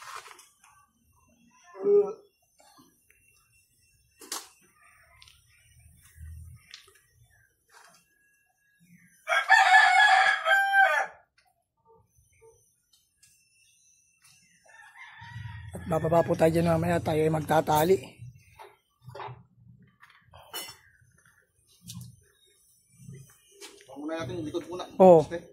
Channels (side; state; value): both; identical; correlation 1.00